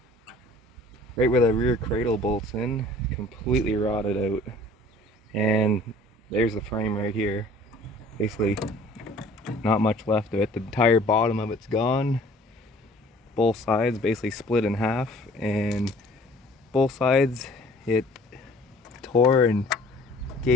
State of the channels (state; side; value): normal; both; correlation 0.51